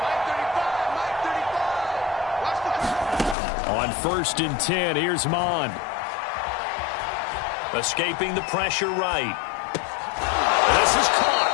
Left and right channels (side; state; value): right; drops out; at 3.4 s